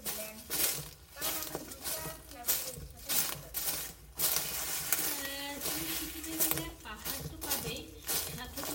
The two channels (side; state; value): both; identical; correlation 1.00